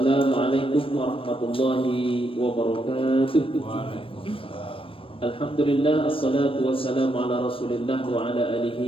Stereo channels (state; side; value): late; right; 0.26 ms